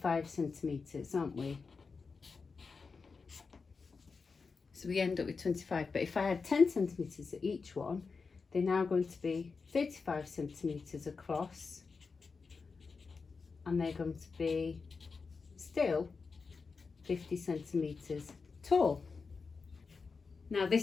centimetres, aren't we? So we end up with 25, but if I add 10 centimetres at each one, they're now going to be 35 centimetres across, and they're going to be still 50 centimetres tall. Now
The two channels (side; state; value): right; quieter; 4.8 dB